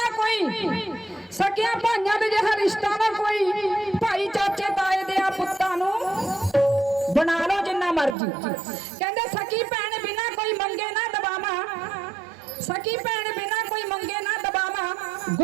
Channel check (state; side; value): drops out; left; at 8.2 s